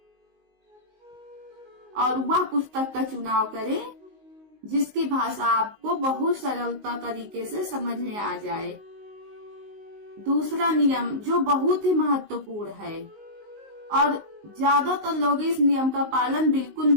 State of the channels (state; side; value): late; left; 19 ms